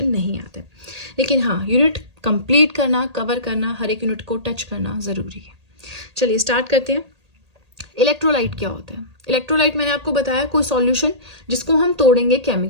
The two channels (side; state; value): left; late; 1.8 ms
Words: नहीं आते, लेकिन हाँ यूनिट कंप्लीट करना, कवर करना, हर एक यूनिट को टच करना जरूरी है. चलिए स्टार्ट करते हैं. इलेक्ट्रोलाइट क्या होता है. इलेक्ट्रोलाइट मैंने आपको बताया कोई सॉल्यूशन जिसको हम तोड़ेंगे